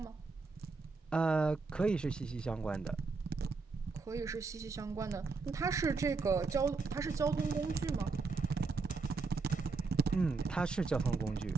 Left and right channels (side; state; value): left; quieter; 4.2 dB